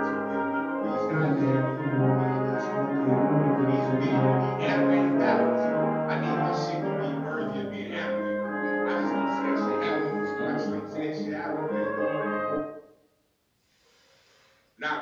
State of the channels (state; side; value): identical; both; correlation 1.00